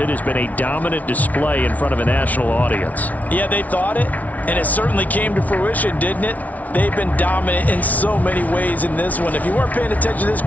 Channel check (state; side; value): late; right; 0.072 ms